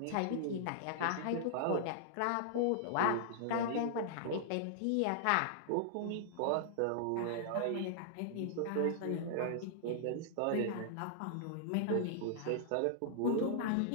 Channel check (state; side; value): different; both; correlation -0.01